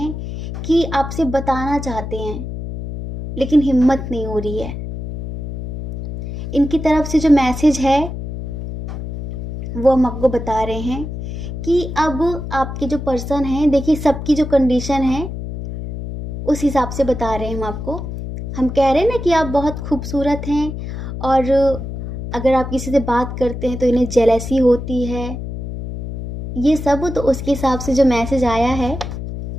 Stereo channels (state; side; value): noise; left; hum, 7 dB below the sound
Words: कि आपसे बताना चाहते हैं, लेकिन हिम्मत नहीं हो रही है। इनकी तरफ से जो मैसेज है वो हम आपको बता रहे हैं कि अब आपके जो पर्सन हैं, देखिए सबकी जो कंडीशन है उस हिसाब से बता रहे हैं हम आपको। हम कह रहे हैं ना कि आप बहुत खूबसूरत हैं, और अगर आप किसी से बात करते हैं तो इन्हें जेलसी होती है, ये सब। तो उसके हिसाब से जो मैसेज आया है,